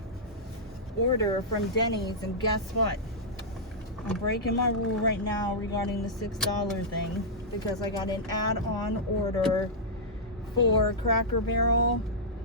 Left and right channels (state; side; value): normal; both; correlation -0.10